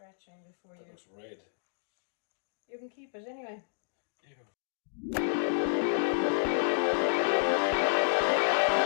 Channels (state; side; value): silent; right; digital silence